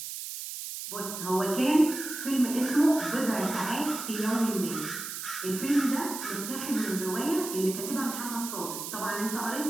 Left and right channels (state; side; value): noise; right; hiss, 7 dB below the sound